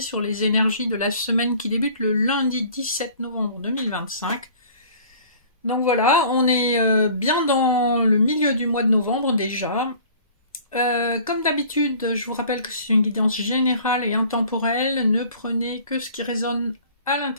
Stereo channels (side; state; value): both; inverted; correlation -0.49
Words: sur les énergies de la semaine qui débute le lundi 17 novembre 2025. Donc voilà, on est bien dans le milieu du mois de novembre déjà. Comme d'habitude, je vous rappelle que c'est une guidance générale et intemporelle. Ne prenez que ce qui résonne à